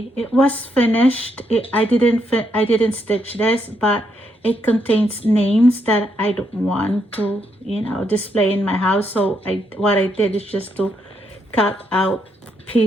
It was finished. I didn't stitch this, but it contains names that I don't want to, display in my house. So what I did is just to cut out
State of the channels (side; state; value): both; normal; correlation 0.77